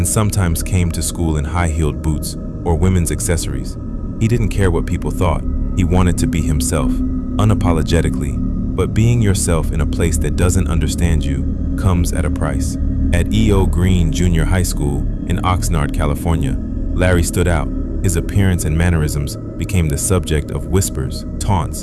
sometimes came to school in high-heeled boots or women's accessories. He didn't care what people thought. He wanted to be himself, unapologetically. But being yourself in a place that doesn't understand you comes at a price. At E.O. Green Junior High School in Oxnard, California, Larry stood out. His appearance and mannerisms became the subject of whispers, taunts,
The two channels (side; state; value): both; identical; correlation 1.00